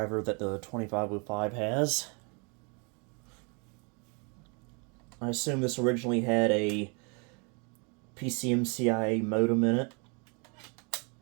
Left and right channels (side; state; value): left; quieter; 34.4 dB